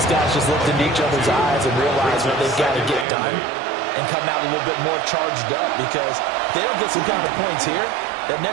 guys just looked into each other's eyes and realize what they've got to get done and come out a little bit more charged up, because if they don't get some kind of points here, that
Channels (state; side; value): drops out; left; at 3.1 s